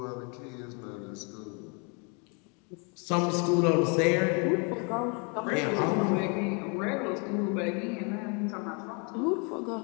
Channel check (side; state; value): right; quieter; 34.7 dB